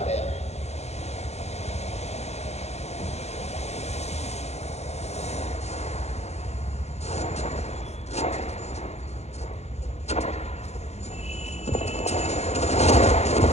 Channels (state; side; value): late; right; 0.31 ms